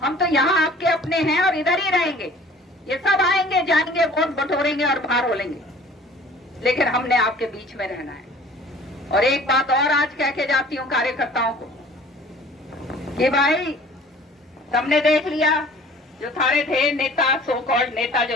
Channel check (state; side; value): normal; both; correlation 0.49